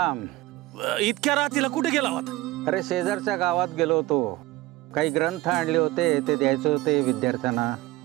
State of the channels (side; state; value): left; quieter; 18.2 dB